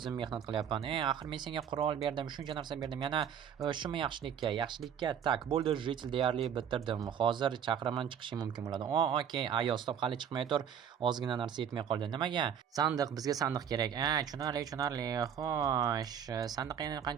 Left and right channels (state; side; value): quieter; left; 8.5 dB